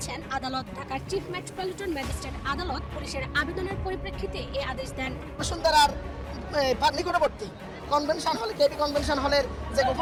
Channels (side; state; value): both; identical; correlation 1.00